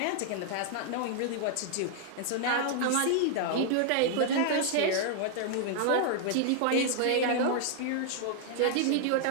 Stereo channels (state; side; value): different; both; correlation 0.00